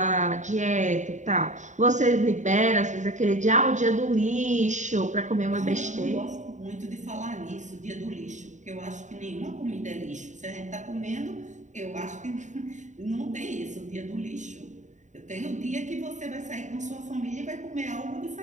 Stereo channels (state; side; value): late; left; 0.35 ms